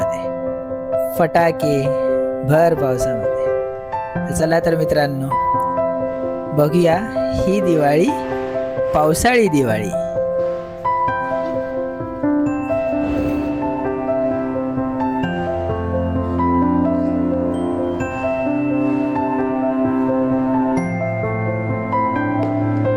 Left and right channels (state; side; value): identical; both; correlation 1.00